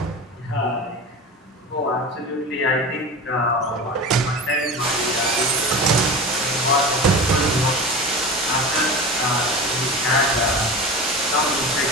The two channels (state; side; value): normal; both; correlation 0.30